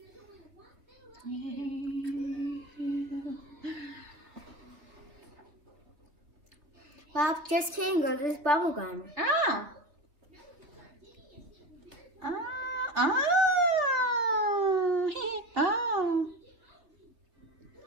Well, just kidding, girl. This is bubble gum. Oh. Oh. Oh. Oh.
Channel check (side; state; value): left; late; 3.0 ms